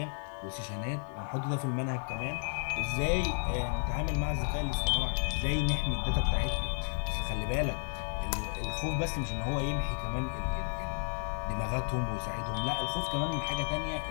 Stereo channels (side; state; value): right; silent; 56 dB below the other